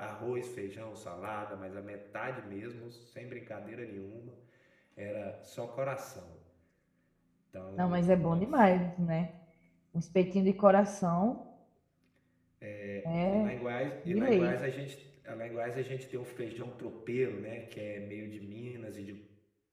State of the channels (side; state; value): both; identical; correlation 1.00